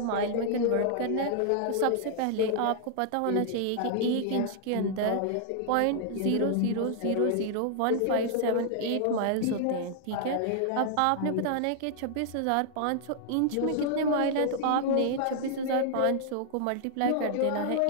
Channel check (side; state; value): both; different; correlation -0.01